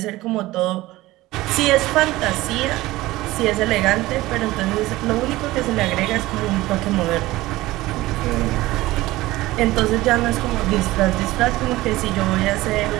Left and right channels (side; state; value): left; quieter; 18.1 dB